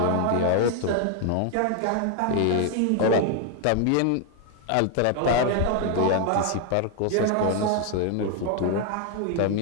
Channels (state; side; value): different; both; correlation 0.00